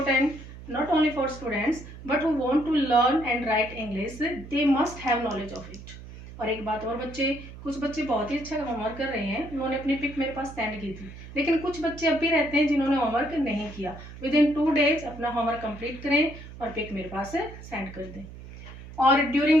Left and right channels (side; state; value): right; noise; hum, 15 dB below the sound